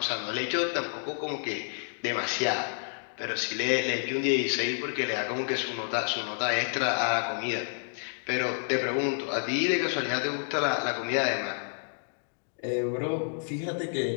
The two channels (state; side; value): silent; right; 58 dB below the other